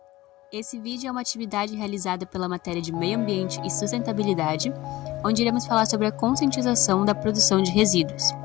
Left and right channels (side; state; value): right; quieter; 17.9 dB